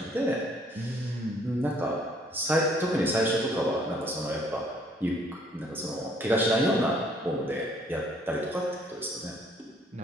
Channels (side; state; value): both; normal; correlation 0.62